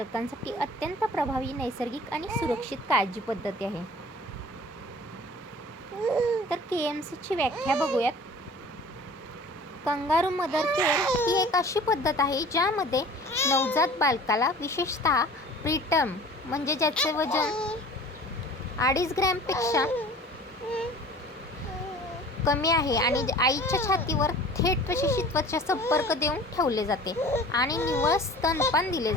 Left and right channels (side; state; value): both; normal; correlation 0.44